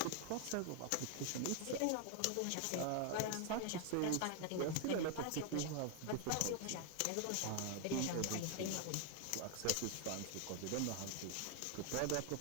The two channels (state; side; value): different; both; correlation 0.00